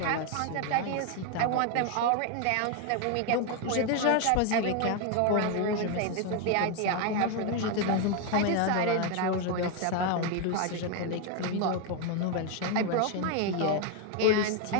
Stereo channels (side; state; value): both; different; correlation 0.01